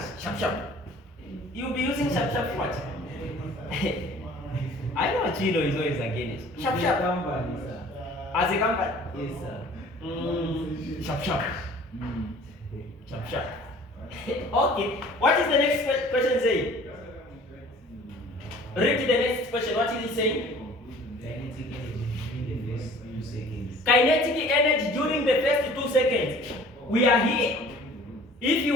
sharp. You'll be using sharp what? I know Chilo is always against it. Sharp. As a company? Yes, sir. Sharp. Okay. What is the next question saying? Read the next question. What is it saying? Kinetic energy during the first 2 seconds. Kinetic energy during the first 2 seconds. We are here. If you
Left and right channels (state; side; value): normal; both; correlation 0.49